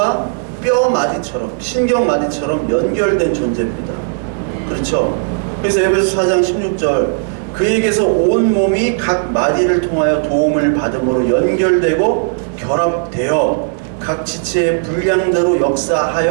뼈 마디처럼 신경 마디처럼 연결된 존재입니다. 그렇죠? 그래서 에베소 4장 16절 그에게서 온 몸이 각 마디를 통하여 도움을 받음으로 연결되고 결합되어 각 지체의 분량대로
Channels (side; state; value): left; silent; digital silence